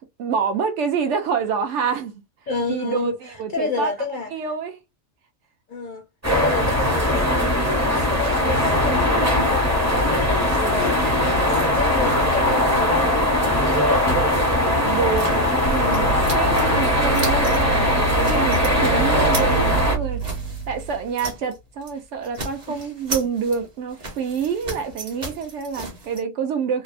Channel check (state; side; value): normal; both; correlation 0.04